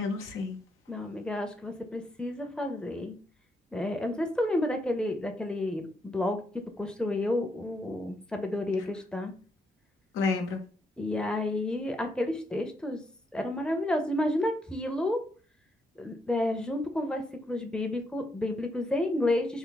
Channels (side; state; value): both; normal; correlation 0.78